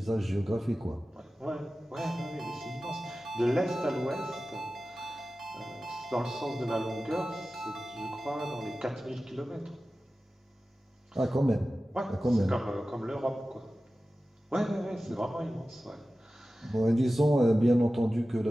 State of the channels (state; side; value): normal; both; correlation 0.95